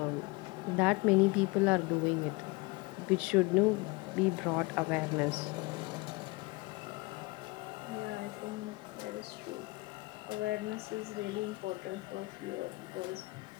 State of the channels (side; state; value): right; quieter; 24.3 dB